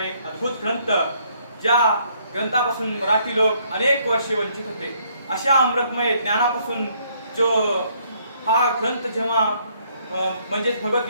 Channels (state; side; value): inverted; both; correlation -0.67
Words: एक अद्भुत ग्रंथ, ज्या ग्रंथापासून मराठी लोक अनेक वर्षे वंचित होते। अशा अमृतमय ज्ञानापासून जो हा ग्रंथ जेव्हा म्हणजे